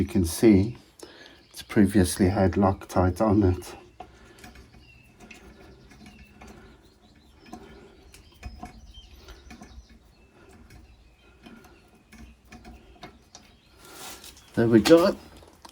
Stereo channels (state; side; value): identical; both; correlation 1.00